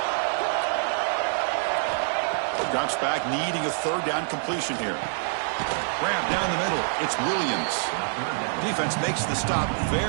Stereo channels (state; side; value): silent; left; digital silence